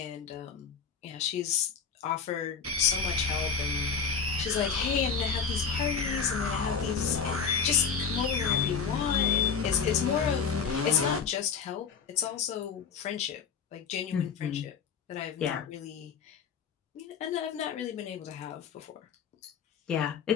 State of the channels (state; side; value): quieter; right; 6.3 dB